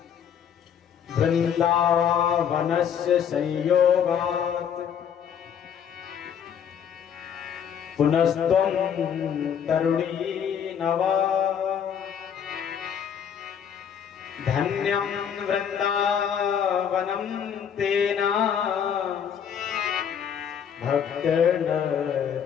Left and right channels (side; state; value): right; quieter; 8.2 dB